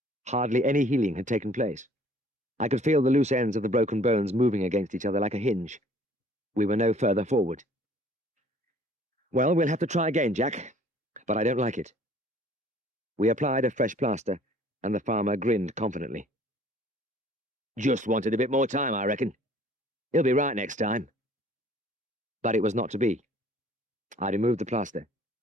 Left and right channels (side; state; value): both; normal; correlation 0.55